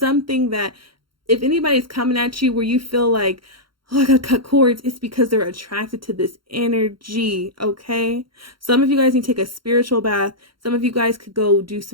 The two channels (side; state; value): left; late; 0.73 ms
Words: that, if anybody's coming at you where you feel like, oh, I gotta cut cords, it's because they're attracted to this energy, okay? Some of you guys need to take a spiritual bath. Some of you guys could go do